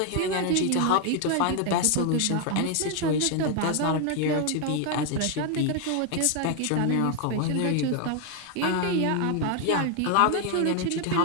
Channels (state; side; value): different; both; correlation 0.01